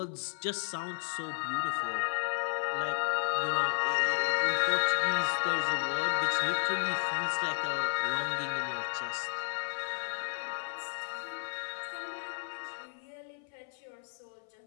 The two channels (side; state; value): right; silent; 56 dB below the other